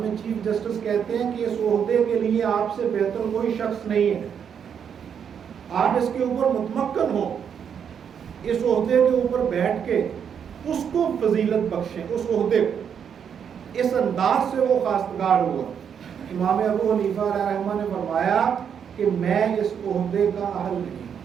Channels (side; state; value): left; quieter; 7.7 dB